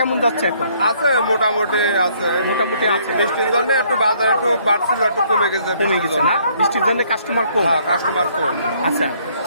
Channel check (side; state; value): both; inverted; correlation -0.65